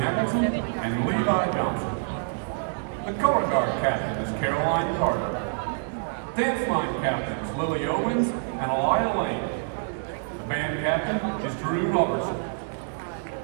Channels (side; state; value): left; silent; 60 dB below the other